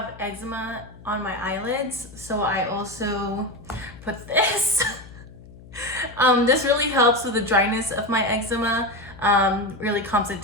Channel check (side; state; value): left; noise; hum, 19 dB below the sound